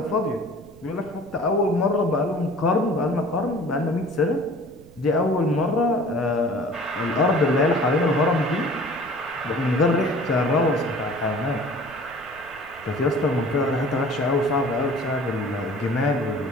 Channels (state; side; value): noise; right; rumble, 23 dB below the sound